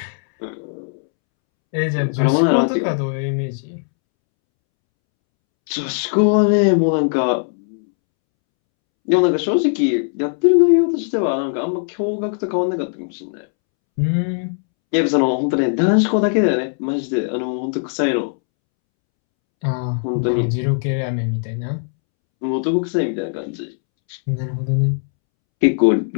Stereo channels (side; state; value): right; silent; 66 dB below the other